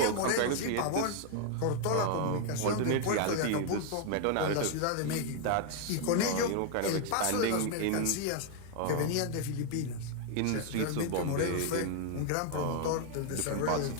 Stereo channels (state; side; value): different; both; correlation 0.00